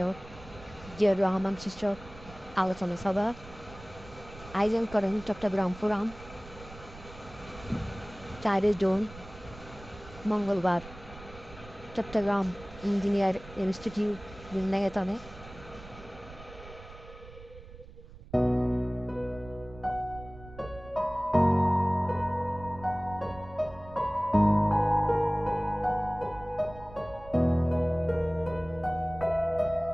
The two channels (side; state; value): right; noise; rumble, 17 dB below the sound